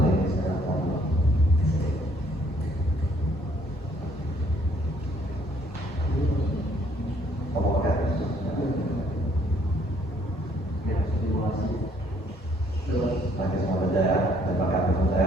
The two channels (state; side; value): normal; both; correlation 0.64